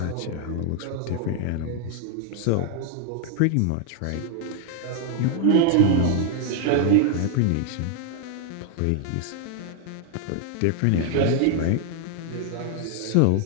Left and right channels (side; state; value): both; different; correlation 0.00